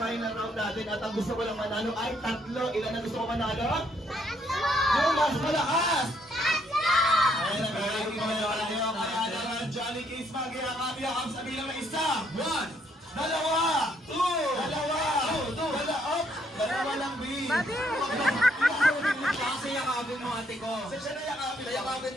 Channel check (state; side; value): normal; both; correlation 0.71